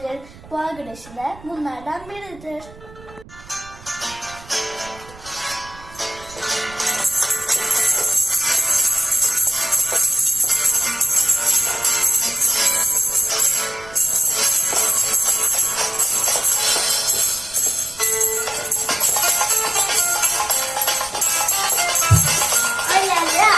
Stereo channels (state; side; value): noise; right; rumble, 21 dB below the sound